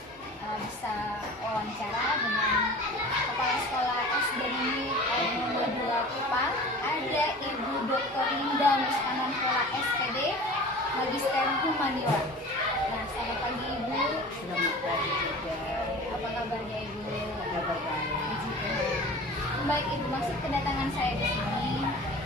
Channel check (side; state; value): both; normal; correlation 0.39